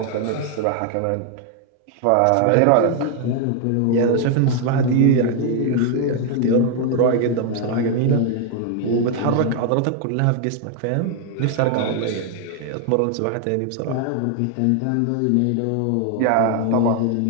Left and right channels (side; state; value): both; different; correlation 0.00